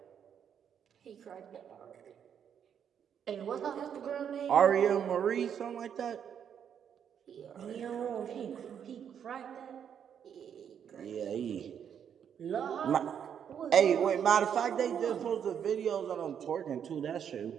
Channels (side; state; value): left; quieter; 8.3 dB